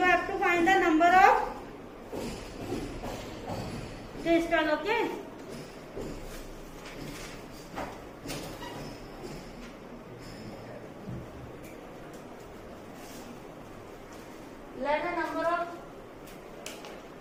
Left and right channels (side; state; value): both; identical; correlation 1.00